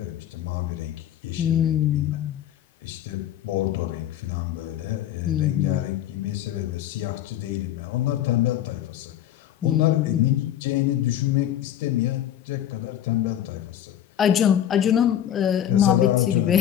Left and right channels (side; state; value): right; quieter; 11.1 dB